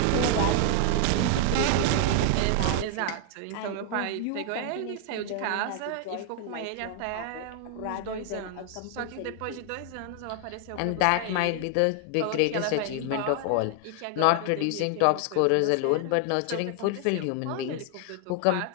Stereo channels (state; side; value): different; both; correlation 0.00